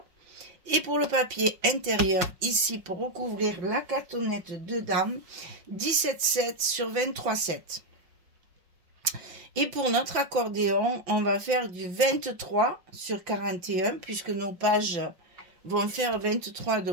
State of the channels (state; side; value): late; left; 5.8 ms